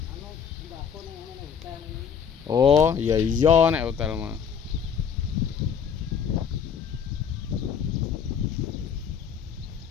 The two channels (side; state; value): right; quieter; 7.3 dB